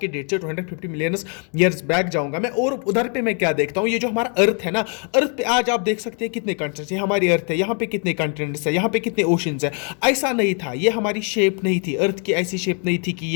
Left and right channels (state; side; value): quieter; right; 39.7 dB